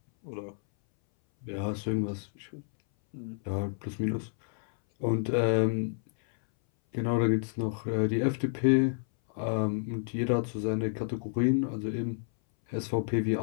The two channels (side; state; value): right; silent; 58 dB below the other